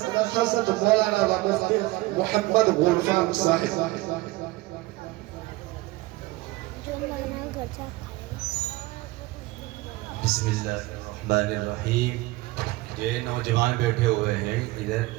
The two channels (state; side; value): quieter; left; 20.3 dB